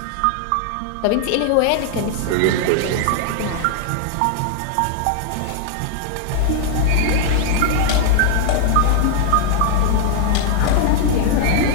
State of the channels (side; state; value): both; different; correlation 0.00